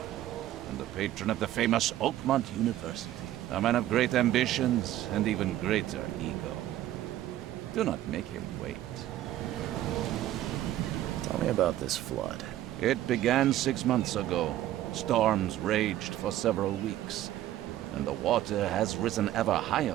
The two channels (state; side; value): quieter; left; 13.4 dB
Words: and the patron of the famous Oakmont University. A man of great ambitions and even greater ego. Do not make him wait. Tell me about this flood. It began 6 months ago. Storms raged for several weeks, and the water has risen ever